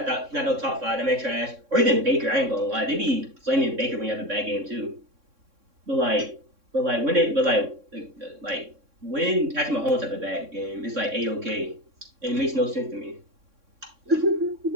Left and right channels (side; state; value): left; late; 3.6 ms